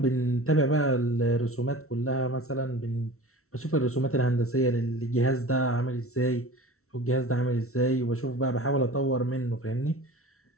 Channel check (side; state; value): right; late; 0.63 ms